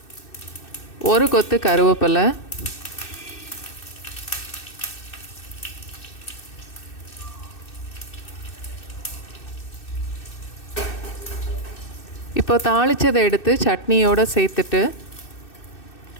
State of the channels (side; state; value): right; late; 2.6 ms